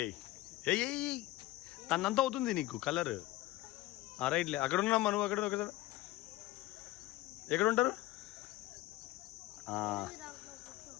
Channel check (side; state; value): right; quieter; 17.1 dB